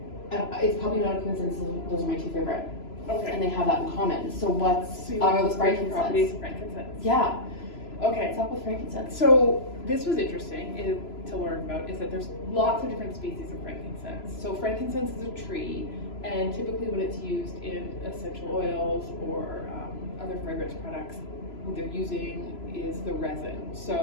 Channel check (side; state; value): right; late; 3.0 ms